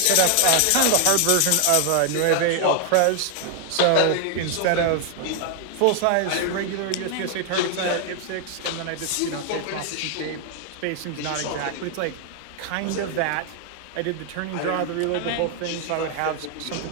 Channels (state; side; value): different; both; correlation 0.00